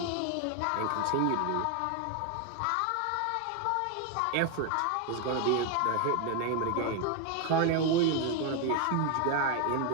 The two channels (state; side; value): different; both; correlation 0.01